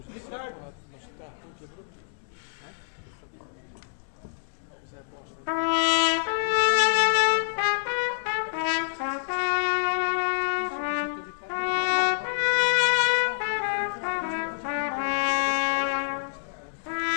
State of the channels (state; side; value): silent; right; digital silence